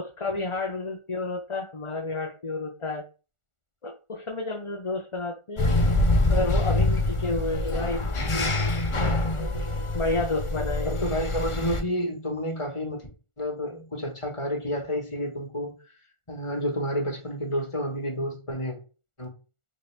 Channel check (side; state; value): right; late; 1.4 ms